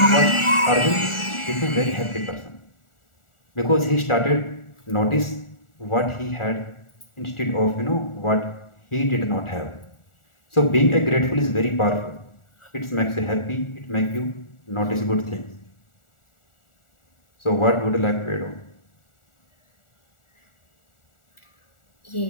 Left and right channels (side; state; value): right; late; 1.4 ms